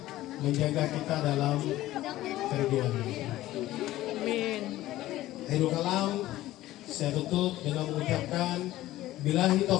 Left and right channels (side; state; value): right; quieter; 15.6 dB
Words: menjaga kita dalam kerjaan. Amin. Akhirul kalam, saya tutup dengan mengucapkan billahi